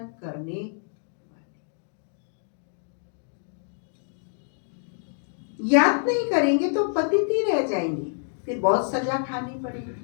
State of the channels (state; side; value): silent; right; digital silence